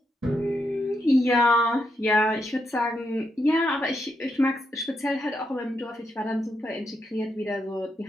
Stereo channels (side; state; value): both; normal; correlation 0.82